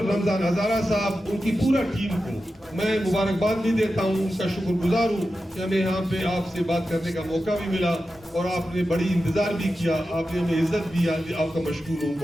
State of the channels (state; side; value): normal; both; correlation 0.92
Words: رمضان ہزارہ صاحب, ان کی پورا ٹیم کو میں مبارکباد بھی دیتا ہوں, ان کا شکر گزار ہوں کہ ہمیں یہاں پہ آپ سے بات کرنے کا موقع بھی ملا اور آپ نے بڑی انتظار بھی کیا, آپ نے ہمیں عزت بھی. آپ کا مشکور ہوں,